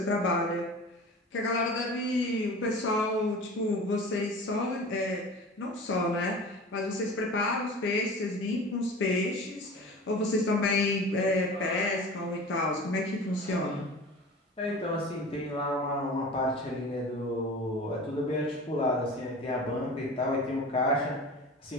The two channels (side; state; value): both; normal; correlation 0.37